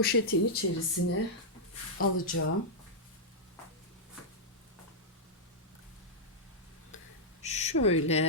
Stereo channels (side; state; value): both; normal; correlation -0.08